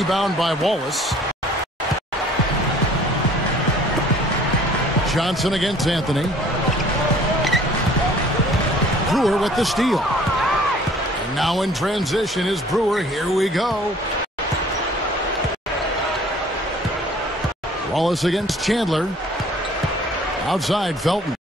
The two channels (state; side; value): normal; both; correlation 0.53